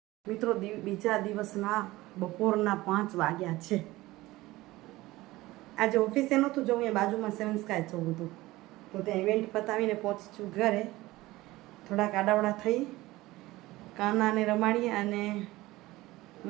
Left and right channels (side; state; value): left; quieter; 18.7 dB